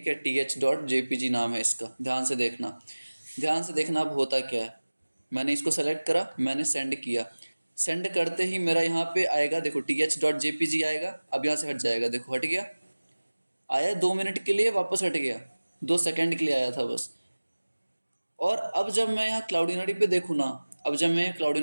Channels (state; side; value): inverted; both; correlation -1.00